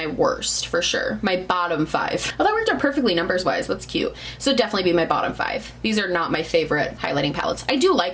worst for sure. My bottom 5. Oh, that worked out perfectly numbers wise. That's cute. So definitely be my bottom 5. These are not my favorite highlighting palettes. I do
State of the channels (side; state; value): both; identical; correlation 1.00